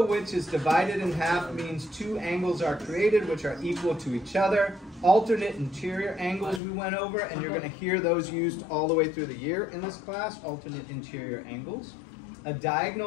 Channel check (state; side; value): drops out; right; at 6.6 s